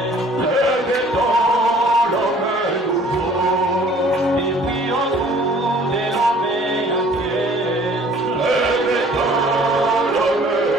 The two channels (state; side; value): normal; both; correlation 0.54